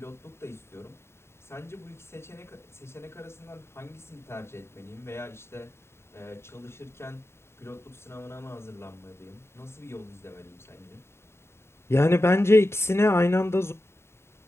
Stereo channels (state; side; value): late; right; 0.12 ms